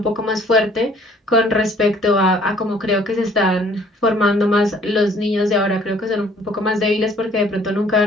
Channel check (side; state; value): both; normal; correlation 0.57